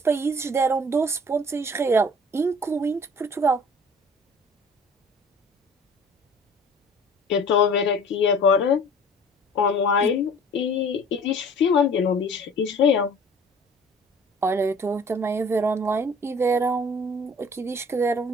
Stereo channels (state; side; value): normal; both; correlation 0.48